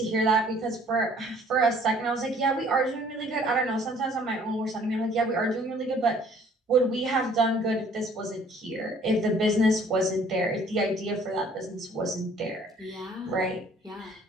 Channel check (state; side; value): normal; both; correlation 0.56